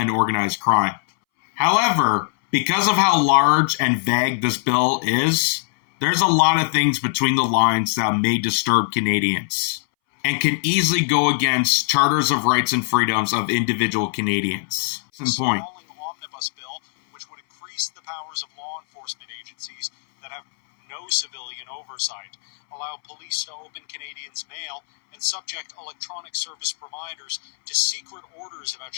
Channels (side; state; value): right; silent; 64 dB below the other